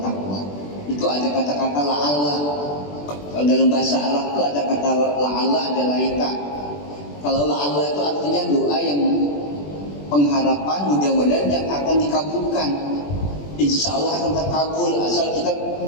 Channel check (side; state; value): right; late; 21 ms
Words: Itu ada kata-kata la'alla. Kalau dalam bahasa Arab itu ada kata la'alla, ada laika. Kalau la'alla itu artinya doa yang pengharapan mudah-mudahan yang akan dikabulkan. Insya Allah akan terkabul asal kita